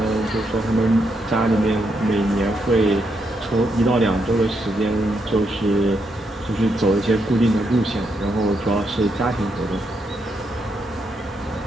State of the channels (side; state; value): both; normal; correlation 0.79